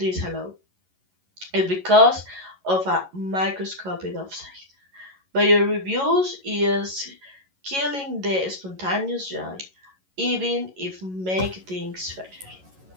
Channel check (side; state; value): left; late; 11 ms